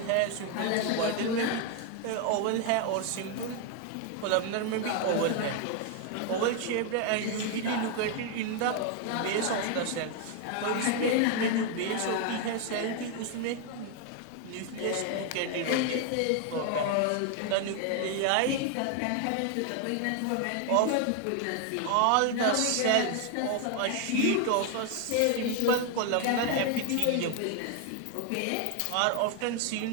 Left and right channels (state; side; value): different; both; correlation 0.01